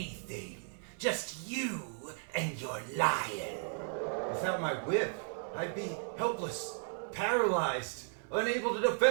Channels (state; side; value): silent; left; 54 dB below the other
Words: Just you and your lion. Without my whip, I'd be helpless, paralyzed, unable to